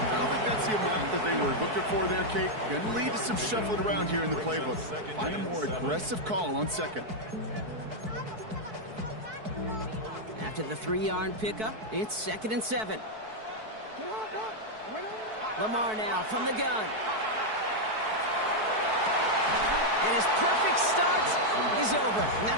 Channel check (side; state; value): left; late; 4.6 ms